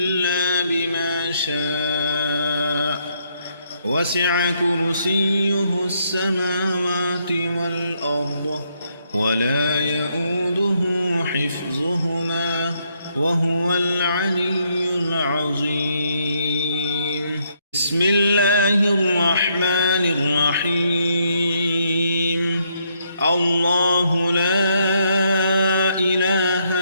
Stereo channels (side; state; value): both; inverted; correlation -0.74